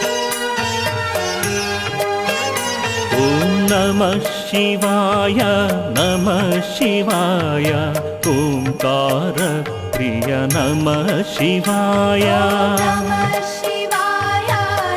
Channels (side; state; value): both; identical; correlation 1.00